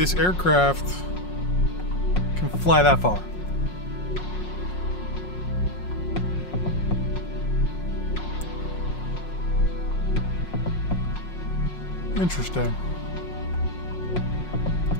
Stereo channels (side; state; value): right; late; 5.5 ms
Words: aircraft can fly that far? Interesting.